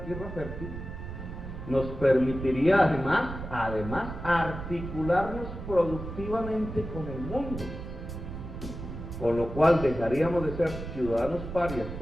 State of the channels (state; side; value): noise; right; rumble, 9 dB below the sound